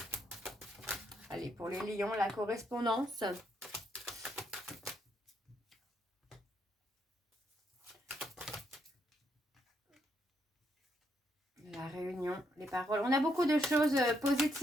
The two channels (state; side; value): normal; both; correlation 0.76